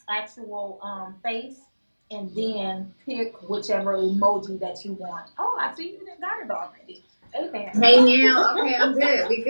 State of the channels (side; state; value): both; inverted; correlation -1.00